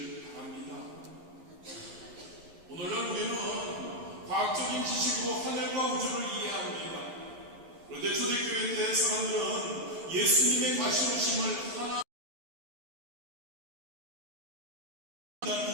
바랍니다. 오늘날 우리는 과학적인 지식으로 하늘과 우주를 이해합니다. 그런데 초대교회 때 사람들은 예수님의 다시 오심을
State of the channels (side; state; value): left; late; 11 ms